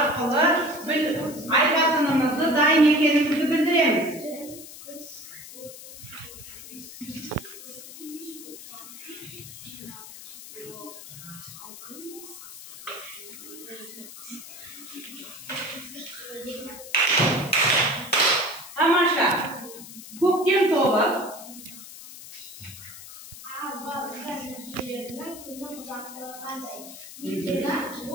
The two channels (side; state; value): left; noise; hiss, 14 dB below the sound